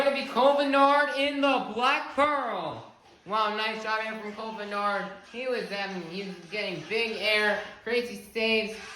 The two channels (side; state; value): both; identical; correlation 1.00